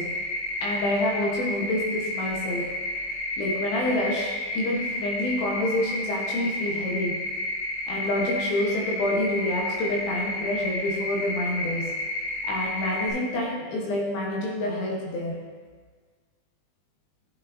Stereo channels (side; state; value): right; late; 20 ms